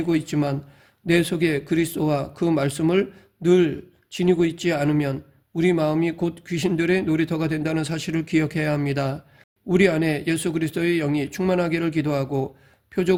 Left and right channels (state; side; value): identical; both; correlation 1.00